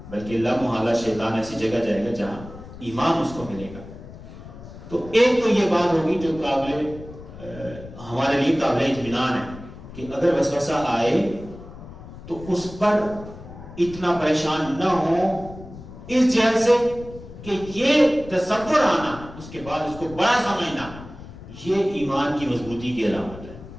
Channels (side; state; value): left; noise; rumble, 15 dB below the sound